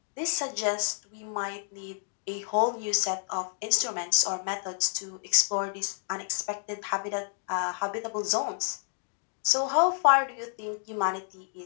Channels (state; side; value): silent; right; digital silence